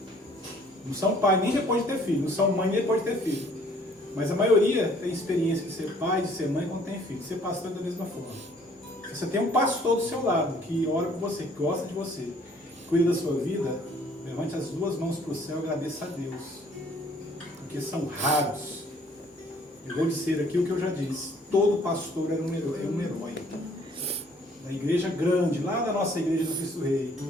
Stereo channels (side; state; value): both; normal; correlation 0.59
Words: Não são pai nem depois de ter filho. Não são mãe nem depois de ter filho. Mas a maioria tem experiência de ser pai, de ser mãe quando tem filho. De ser pastor da mesma forma. Você tem um pastor do seu lado que ora por você, que gosta de você, que cuida da sua vida. Levante as duas mãos para o céu e agradeça a Deus. Porque são raros. Eu vou dizer aqui o que eu já disse. Todo pastor é um herói. Na igreja grande, lá da nossa igreja do Cristo Rei,